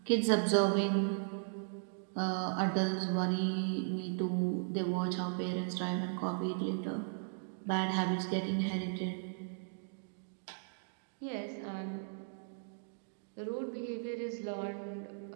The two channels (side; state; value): left; silent; digital silence